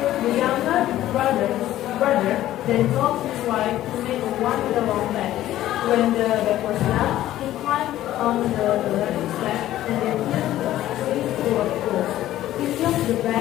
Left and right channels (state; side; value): quieter; right; 13.8 dB